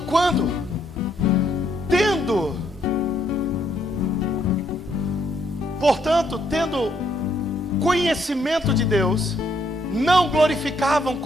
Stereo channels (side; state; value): both; normal; correlation 0.72